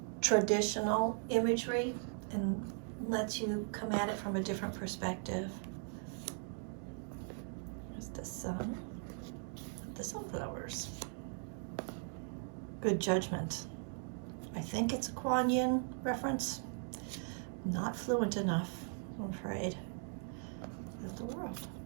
traditional imagery and lets you come at it from a different perspective. There's the sun, the sunflowers. Good judgment. I think it's a Kuan Yin reference. Not fluent enough, I'm afraid. Of the world.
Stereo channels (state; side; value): silent; left; 52 dB below the other